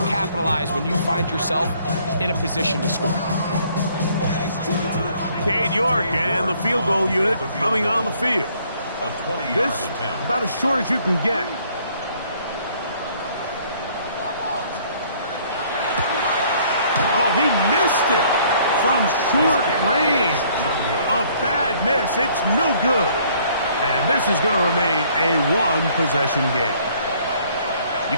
when you find yourself in a position to score. Cade York and the field goal unit coming on the field. This about as short as you can get. Oh, he missed it from short range. A bad miss. It's no good. And this is going to remain a one-possession game. You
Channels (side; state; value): both; inverted; correlation -0.61